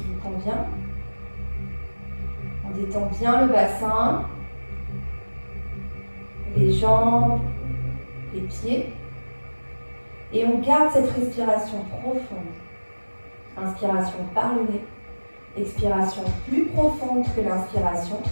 convient. On détend bien le bassin, les jambes, les pieds. Et on garde cette respiration profonde. Inspiration par le nez. Expiration plus profonde que l'inspiration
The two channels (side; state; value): both; inverted; correlation -1.00